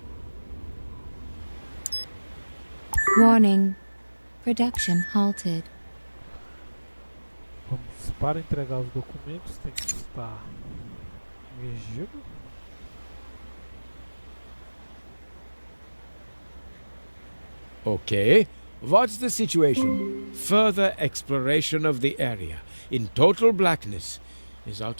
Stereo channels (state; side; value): inverted; both; correlation -1.00